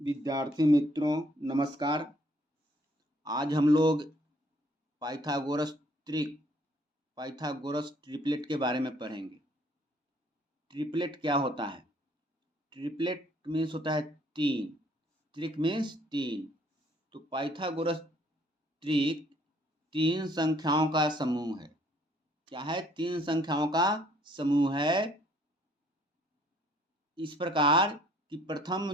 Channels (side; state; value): both; normal; correlation 0.62